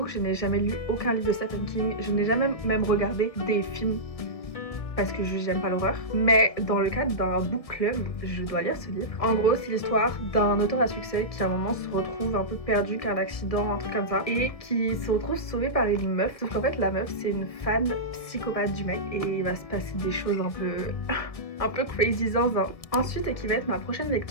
que je n'ai jamais lu aucun livre de Stephen King, je n'ai jamais même regardé des films parce que j'aime pas l'horreur. Mais dans le cadre d'un book club, je dois lire ce livre. En gros, c'est l'histoire d'un auteur à succès qui à un moment se retrouve un peu perdu qu'un accident, un truc comme ça, et qui se retrouve sauvé par une meuf. Sauf qu'en fait, la meuf, c'est une fan psychopathe du mec et il va se passer des choses un peu crazy zinzin. Ensuite, et qui va être ma prochaine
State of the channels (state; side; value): late; right; 1.7 ms